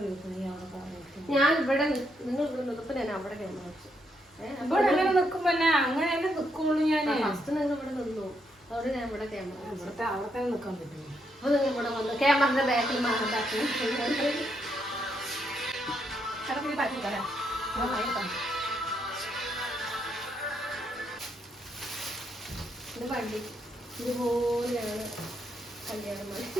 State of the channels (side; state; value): both; normal; correlation 0.77